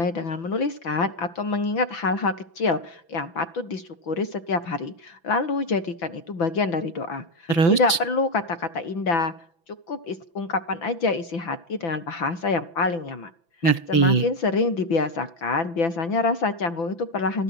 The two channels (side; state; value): right; late; 6.0 ms